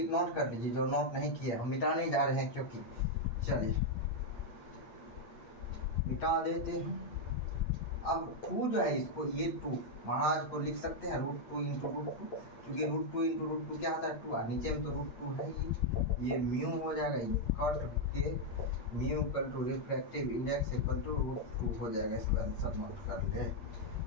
कर लीजिए, जो नोट नहीं किया हम मिटाने जा रहे हैं, क्योंकि चलिए मिटा देते हैं। अब 2 जो है, इसको ये 2 महाराज को लिख सकते हैं √2 इंटू √2, क्योंकि √2 इंटू √2 क्या होता है 2, नीचे में तो √2 है ये म्यू हो जाएगा। ये कट के mu equal to refractive index equal to √2 हो जाएगा। इसको आंसर नोट कर ले,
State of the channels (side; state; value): right; late; 8.7 ms